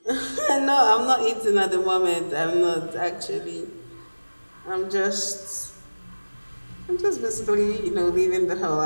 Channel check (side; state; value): both; inverted; correlation -1.00